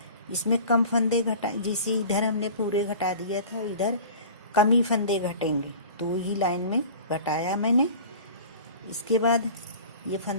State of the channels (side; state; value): both; inverted; correlation -0.41